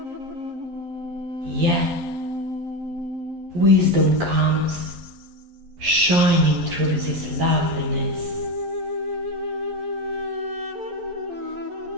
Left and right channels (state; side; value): late; left; 11 ms